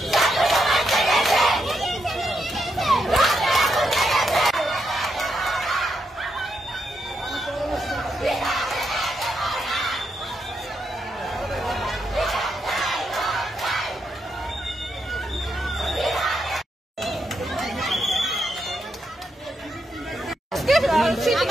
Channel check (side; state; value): both; normal; correlation 0.82